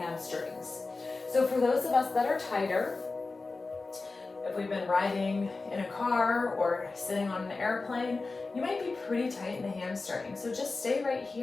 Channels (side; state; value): right; quieter; 3.7 dB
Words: So for those of us that are tighter, if we've been riding in a car or sitting on an airplane, you might be pretty tight in the hamstring. So just stay right